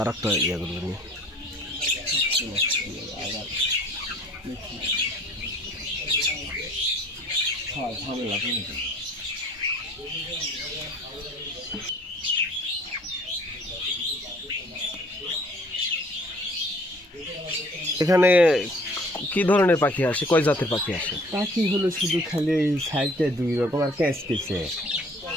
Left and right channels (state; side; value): normal; both; correlation 0.55